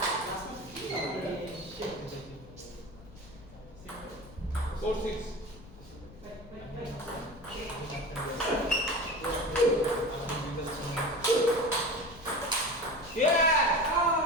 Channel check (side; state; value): left; noise; rumble, 19 dB below the sound